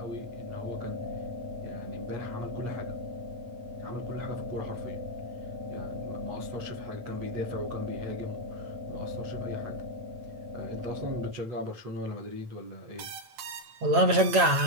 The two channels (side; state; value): left; late; 8.8 ms